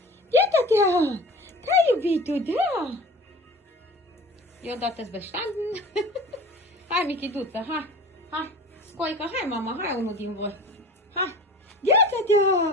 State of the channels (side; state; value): both; normal; correlation 0.38